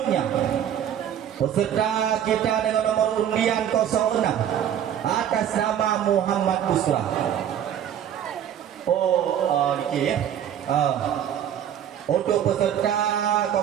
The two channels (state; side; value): quieter; left; 9.9 dB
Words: peserta kita dengan nomor undian 06 atas nama Muhammad Busra. Niki ya. Untuk peserta